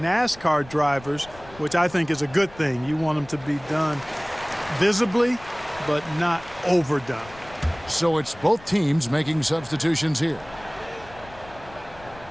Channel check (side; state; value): left; noise; rumble, 21 dB below the sound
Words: drivers, which I think is a good thing. You want them to be done visibly, but not overdone. So it's both teams making substitutions here.